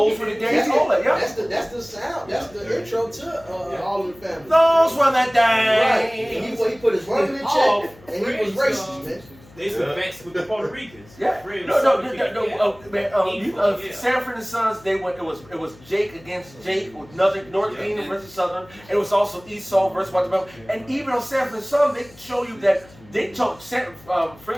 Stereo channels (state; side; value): noise; left; hum, 24 dB below the sound